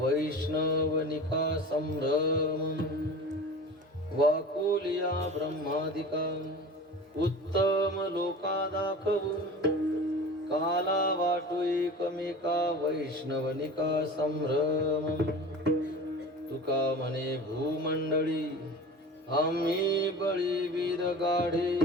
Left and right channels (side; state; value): both; normal; correlation 0.36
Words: संभ्रम, वाकुलिया ब्रह्मादिका, उत्तम लोका दाखवू, काला वाटू एकमेका, वैष्णवनिका संभ्रम. तुका म्हणे भूमंडळी आम्ही बळीवीर गाढे,